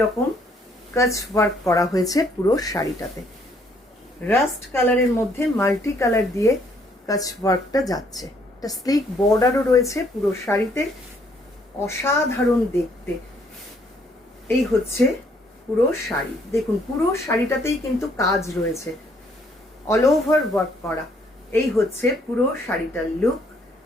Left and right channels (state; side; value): normal; both; correlation 0.67